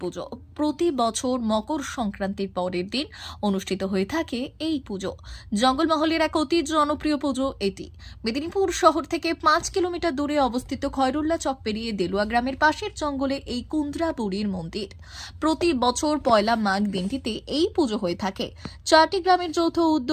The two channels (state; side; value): identical; both; correlation 1.00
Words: পুজো। প্রতি বছর মকর সংক্রান্তির পরের দিন অনুষ্ঠিত হয়ে থাকে এই পুজো। জঙ্গলমহলের এক অতি জনপ্রিয় পুজো এটি। মেদিনীপুর শহর থেকে 5 কিলোমিটার দূরে অবস্থিত খয়রুল্লা চক পেরিয়ে দেলুয়া গ্রামের পাশের জঙ্গলে এই কুন্দ্রা বুড়ির মন্দির। প্রতি বছর পয়লা মাঘ দিনটিতে এই পুজো হয়ে থাকে। 4টি গ্রামের যৌথ